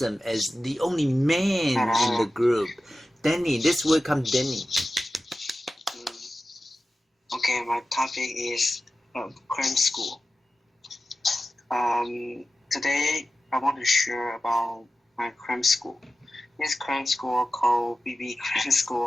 as the only man in the group. Danny, let's welcome Danny. Okay, my topic is cram school. Today I want to share about my cram school. This cram school called BB Cram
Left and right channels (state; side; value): normal; both; correlation 0.94